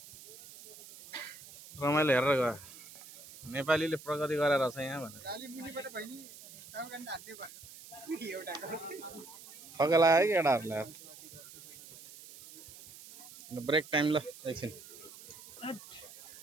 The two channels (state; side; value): noise; right; hiss, 17 dB below the sound